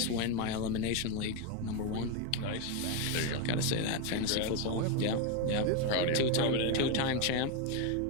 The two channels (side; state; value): both; different; correlation 0.02